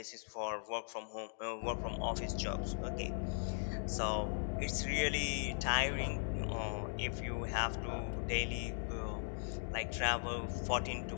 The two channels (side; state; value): right; silent; digital silence